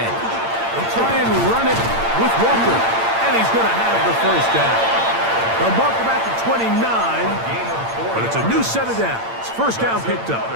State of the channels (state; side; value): late; left; 8.8 ms